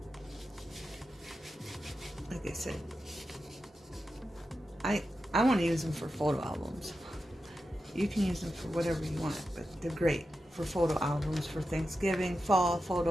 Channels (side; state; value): both; normal; correlation 0.90